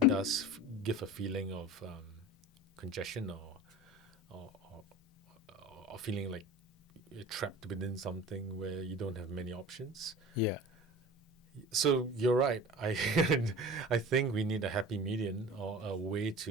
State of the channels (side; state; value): both; normal; correlation 0.37